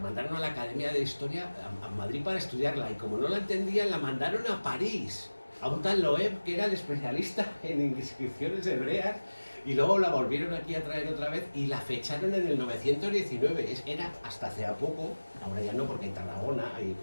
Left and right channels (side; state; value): both; inverted; correlation -1.00